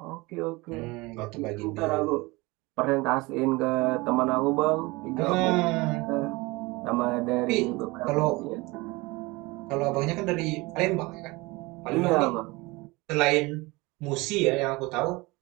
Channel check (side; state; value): left; quieter; 23.4 dB